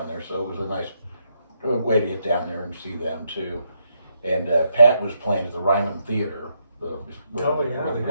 there, so it was a nice way to get down there and see them too. And Pat was playing at the Ryman Theater, where the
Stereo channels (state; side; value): inverted; both; correlation -0.78